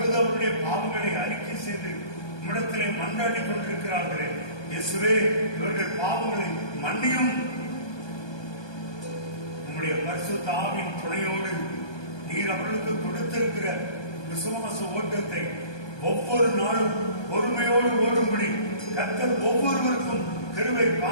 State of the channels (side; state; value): right; late; 1.2 ms